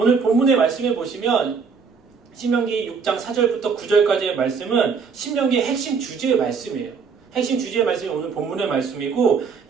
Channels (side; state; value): left; quieter; 5.6 dB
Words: 본문의 말씀에 보시면 신명기 6장 4절부터 9절까지의 말씀은 신명기의 핵심 주제의 말씀이에요. 핵심 주제의 말씀이 오늘 본문의 말씀이고